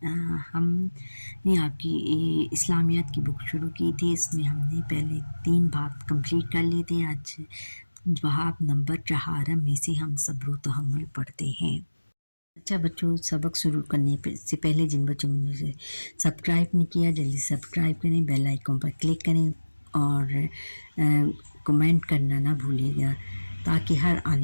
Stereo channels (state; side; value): inverted; both; correlation -1.00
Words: हमने आपकी इस्लामियात की बुक शुरू की थी। इसमें हमने पहले 3 बाब कंप्लीट कर लिए थे। आज बाब नंबर 4 में से हम सब्र व तहम्मुल पढ़ते हैं। अच्छा बच्चों, सबक शुरू करने से पहले जिन बच्चों ने मुझे सब्सक्राइब नहीं किया जल्दी सब्सक्राइब करें, बेल आइकन पर क्लिक करें और कमेंट करना ना भूलिएगा ताकि हर